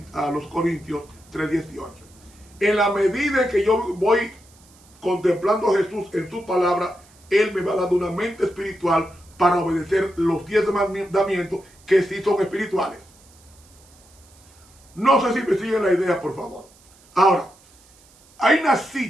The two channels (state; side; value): noise; right; hiss, 28 dB below the sound